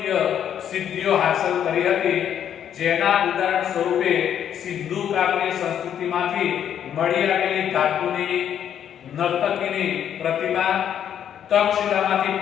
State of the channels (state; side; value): quieter; right; 9.5 dB